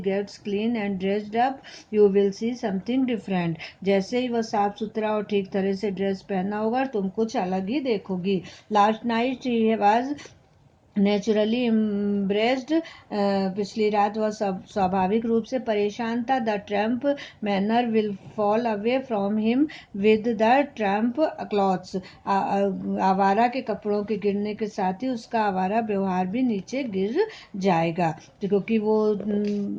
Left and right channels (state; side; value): identical; both; correlation 1.00